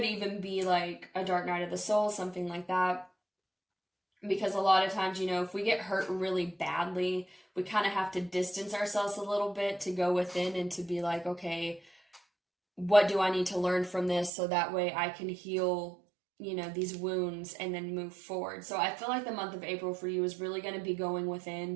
even be like a dark night of the soul, something like that. because a lot of times, you know, if we get hurt really badly, we kind of have to distance ourselves a little bit to go within and to be like, okay, what do I need to learn from this so that way I can heal, you know, these wounds and then move forward. So I feel like the month of April for you is really going to be going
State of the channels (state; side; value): drops out; left; at 14.3 s